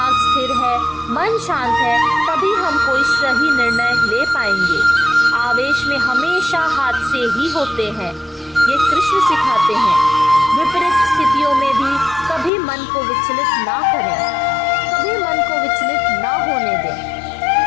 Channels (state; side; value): drops out; right; at 12.5 s